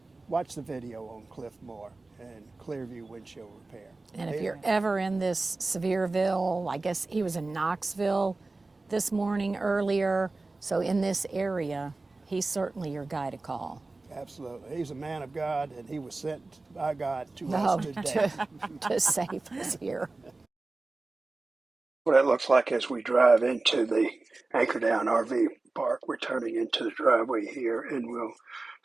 watch the video on Cliffmore and Clearview windshield repair. And if you're ever in this Sevierville, I guess he was in Knoxville this morning earlier. So in this area, he's certainly your guy to call. Absolutely. He's a man of God, and he was sent by God to us today. to save us here. What it looks like as we drive into the Anchordown RV park. We're turning into the driveway here, and we'll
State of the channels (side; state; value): left; quieter; 3.3 dB